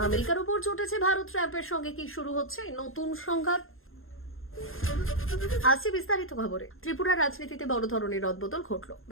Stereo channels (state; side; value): late; right; 0.60 ms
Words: আমেরিকার উপর চটেছে ভারত, ট্রাম্পের সঙ্গে কি শুরু হচ্ছে নতুন সংঘাত। আসছে বিস্তারিত খবরে। ত্রিপুরার রাজনীতিতে বড় ধরনের রদবদল ঘটল।